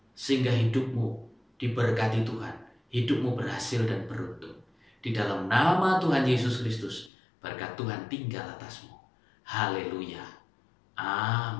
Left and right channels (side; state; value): right; drops out; at 7.1 s